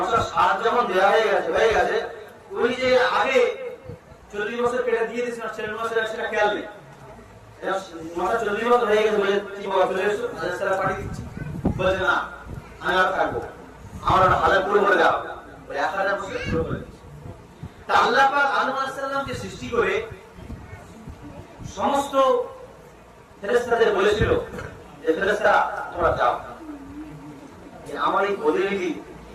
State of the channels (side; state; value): both; identical; correlation 1.00